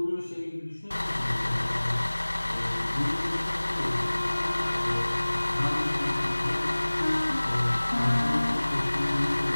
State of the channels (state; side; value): inverted; both; correlation -1.00